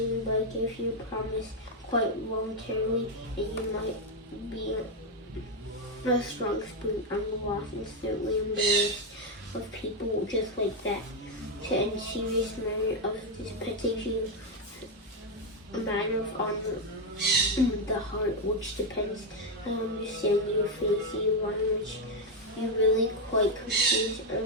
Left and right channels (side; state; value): both; normal; correlation 0.03